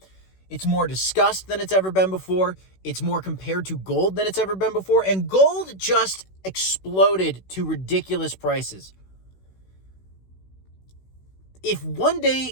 It's more discussed than it's ever been before. It's more compared to gold than it's ever been before. And gold just exploded to ridiculous prices. If one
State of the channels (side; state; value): right; late; 16 ms